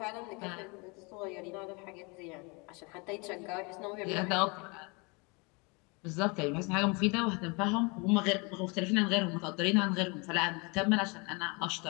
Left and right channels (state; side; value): quieter; right; 29.8 dB